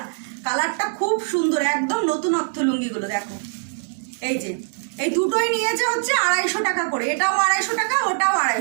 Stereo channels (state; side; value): silent; left; digital silence